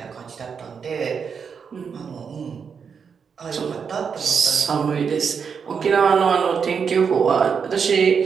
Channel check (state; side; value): quieter; left; 6.3 dB